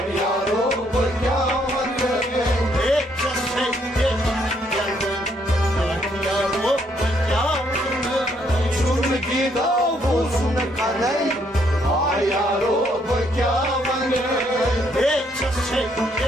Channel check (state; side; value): normal; both; correlation 0.70